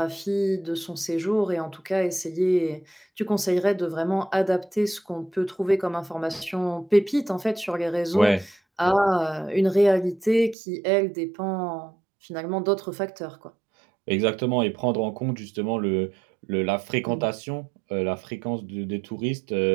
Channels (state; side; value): drops out; left; at 10.6 s